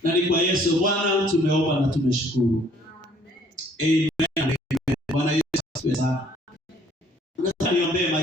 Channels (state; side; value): normal; both; correlation 0.60